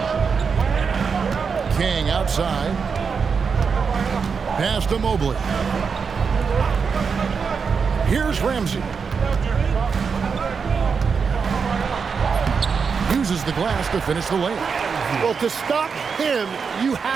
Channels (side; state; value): left; quieter; 5.7 dB